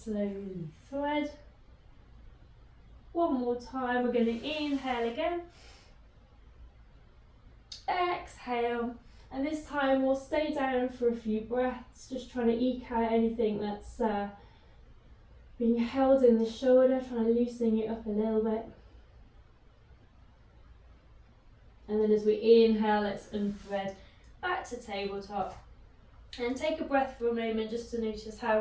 thread. One more time, we're going to inhale again. Exhale. And this time we'll stay down for a few breaths, just trying to eke out anything that's being held in the shoulder, trying to loosen it up a little bit. And then as we inhale, let's unthread back to tabletop. And take a breath for a moment just to notice how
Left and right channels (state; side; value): identical; both; correlation 1.00